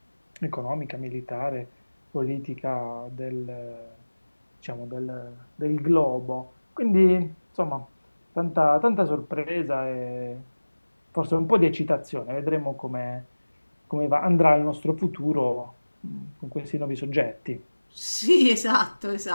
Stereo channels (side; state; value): both; inverted; correlation -1.00